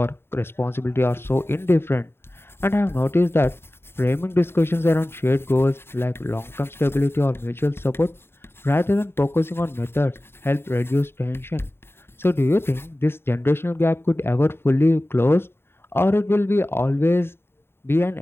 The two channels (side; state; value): right; late; 0.11 ms